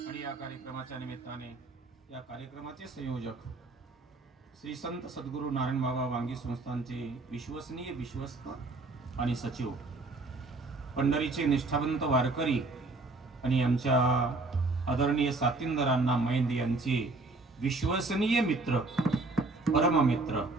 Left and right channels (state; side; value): quieter; left; 3.3 dB